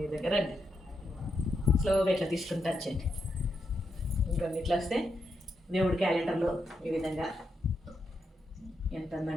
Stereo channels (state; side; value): normal; both; correlation 0.83